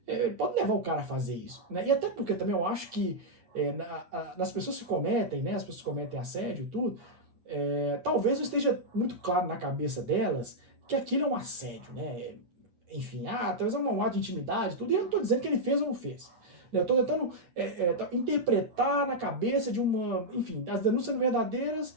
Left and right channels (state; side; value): late; left; 8.7 ms